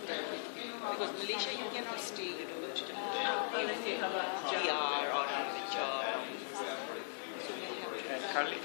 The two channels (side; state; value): right; silent; digital silence